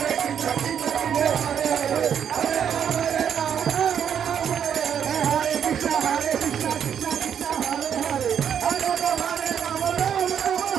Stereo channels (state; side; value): quieter; left; 8.4 dB